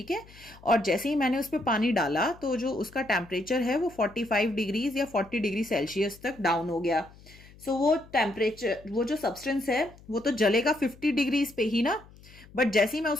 है. और जैसे ही मैंने उस पर पानी डाला तो जो उसका टेम्परेचर है वो 45 डिग्रीज या 40 डिग्री सेल्सियस तक डाउन हो गया. सो वो टेम्परेचर, वो जो सब्सटेंस है वो तो जलेगा 50 डिग्रीज पे ही ना, बट जैसे ही मैं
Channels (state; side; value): noise; left; hum, 23 dB below the sound